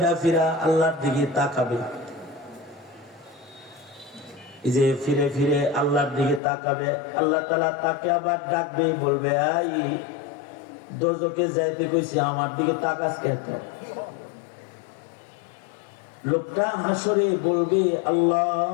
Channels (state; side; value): drops out; right; at 6.4 s